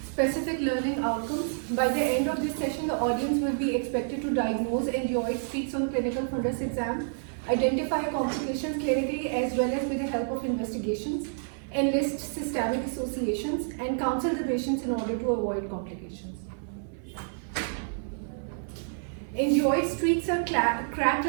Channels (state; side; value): silent; left; 58 dB below the other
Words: Specific learning outcomes. By the end of this session, the audience will be expected to diagnose angioid streaks on clinical fundus exam, identify complications clinically as well as with the help of investigations, enlist systemic associations, and counsel the patients in order to avoid complications. Angioid streaks are